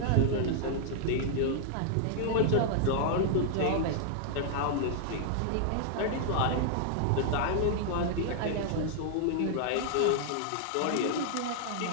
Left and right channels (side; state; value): both; different; correlation -0.01